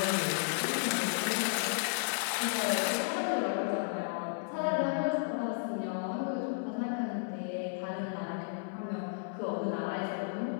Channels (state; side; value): silent; right; digital silence